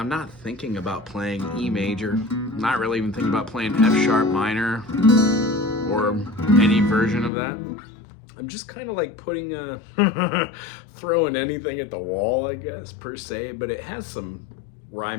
not thinking about playing E major, not really even thinking about playing F sharp minor or any version of that. I'm just kind of like putting throwing anything at the wall, I guess, per se, but it has some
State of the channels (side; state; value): right; drops out; at 7.3 s